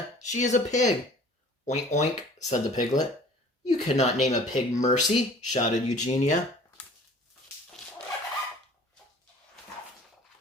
"She is a pig." "Oink, oink," said the piglet. "You cannot name a pig Mercy," shouted Eugenia.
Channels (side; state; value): both; normal; correlation 0.48